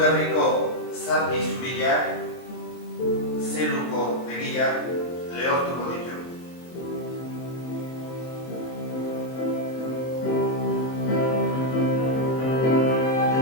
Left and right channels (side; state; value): right; late; 23 ms